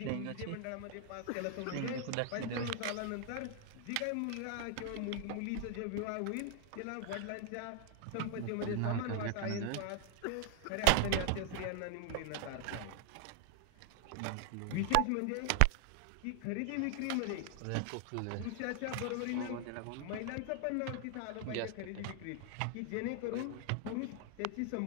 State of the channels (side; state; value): both; different; correlation 0.00